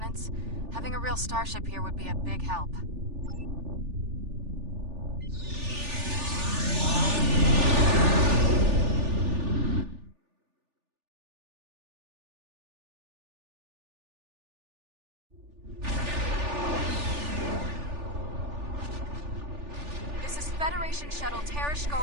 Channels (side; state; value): left; late; 3.4 ms